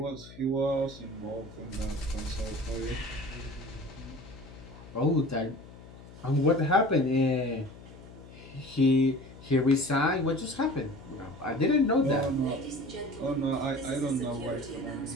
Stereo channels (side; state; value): left; noise; hum, 18 dB below the sound